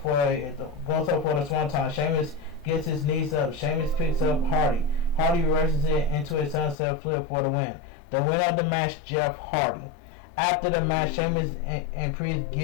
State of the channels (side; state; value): right; drops out; at 6.8 s